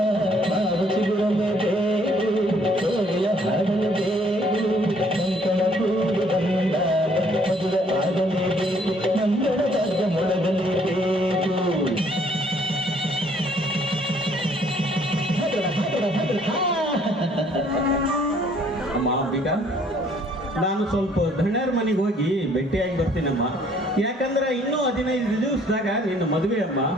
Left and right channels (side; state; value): both; normal; correlation 0.62